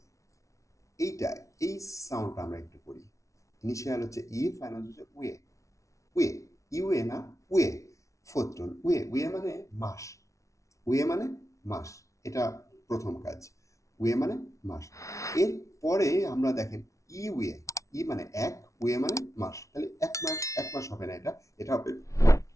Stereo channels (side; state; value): right; late; 0.15 ms